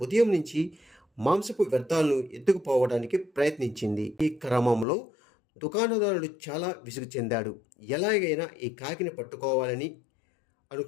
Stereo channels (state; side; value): drops out; right; at 4.9 s